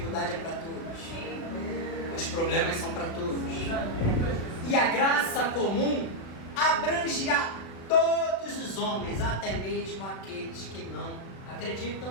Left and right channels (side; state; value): right; late; 36 ms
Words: é para todos, os problemas são para todos. E a graça comum abrange a todos os homens, até mesmo aqueles que não acreditam